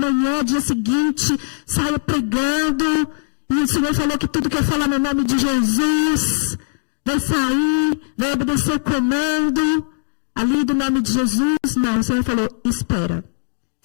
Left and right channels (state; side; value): silent; right; digital silence